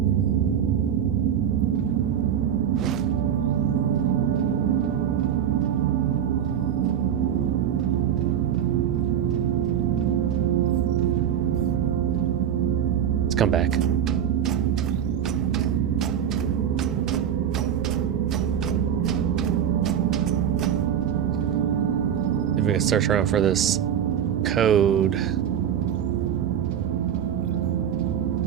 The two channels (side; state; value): left; quieter; 9.2 dB